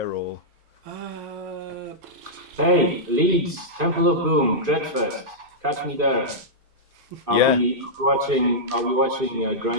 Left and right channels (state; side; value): late; left; 2.5 ms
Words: or? Hey, Leeds, Temple of Boom, Dreadfest. Catch me there. I'll be watching